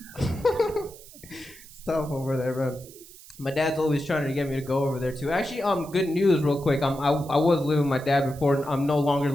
Stuff over there, man. My dad's always trying to get me to go over there too. Actually, good news, real quick. I was living with my dad before. I'm no longer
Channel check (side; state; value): right; noise; hiss, 20 dB below the sound